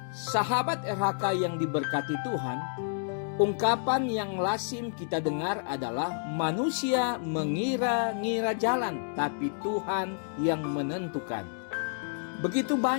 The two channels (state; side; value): silent; right; digital silence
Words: Sahabat RHK yang diberkati Tuhan, ungkapan yang lazim kita dengar adalah manusia mengira-ngira jalan, tapi Tuhan yang menentukan. Begitu